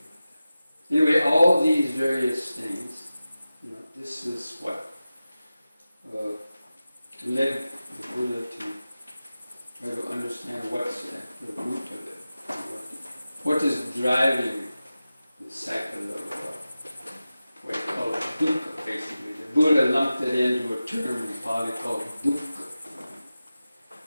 like that. Anyway, all these various things, this is what led the Buddha to try to understand what's at the root of it, what is driving the cycle of what he called dukkha, basically. The Buddha lumped it into a term in Pali called dukkha.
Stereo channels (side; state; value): both; inverted; correlation -0.95